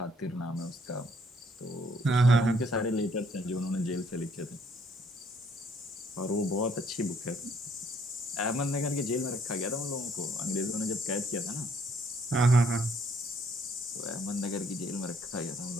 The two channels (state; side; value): normal; both; correlation 0.65